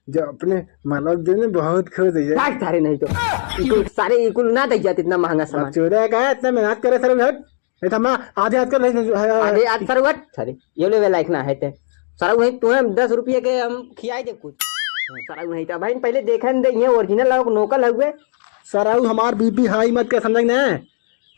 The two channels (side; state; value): right; silent; digital silence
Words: जो अपने मालक देने बहुत खुश है काट सारे नहीं तो इको सारे इको ना दे जाते इतना महंगा सामान चोरा का इतना मेहनत करे सर हट नहीं तो हम आधे हाथ कर आधे आज सरवट सारे ये लेवे लायक ना है ते सराऊ है तुम्हें 10 रुपये के हम खियाई दे कुछ सराऊ नहीं था भाई पहले देखन दे ये ओरिजिनल लोग नोकल हुए सराऊ हमार बीपी हाई मत कर समझ ना